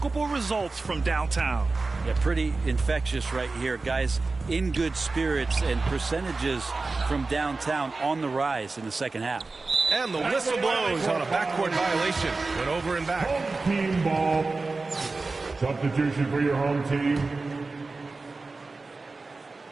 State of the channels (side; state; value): left; quieter; 3.7 dB